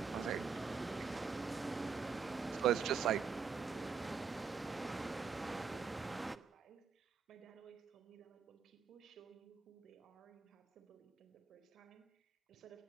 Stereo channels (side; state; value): left; quieter; 5.7 dB